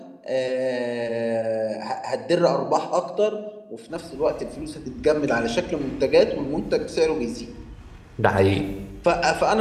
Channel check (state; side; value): identical; both; correlation 1.00